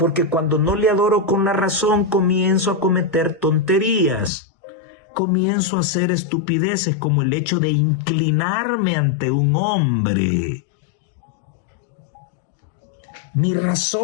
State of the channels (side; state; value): right; drops out; at 4.3 s